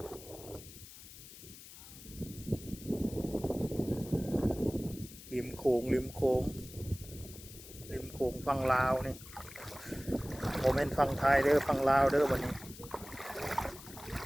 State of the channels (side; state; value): left; noise; hiss, 16 dB below the sound